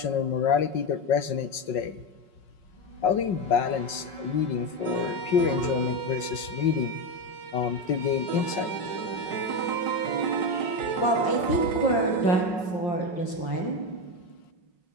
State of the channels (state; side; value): late; right; 5.4 ms